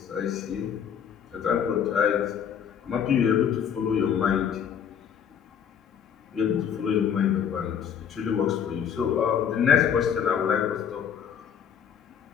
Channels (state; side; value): quieter; right; 8.1 dB